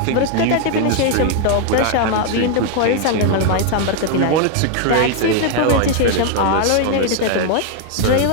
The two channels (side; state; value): both; different; correlation 0.00